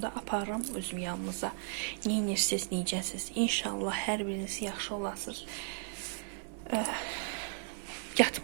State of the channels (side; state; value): left; silent; 54 dB below the other